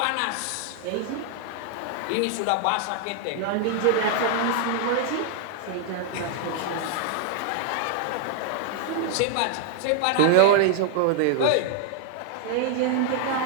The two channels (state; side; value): different; both; correlation 0.00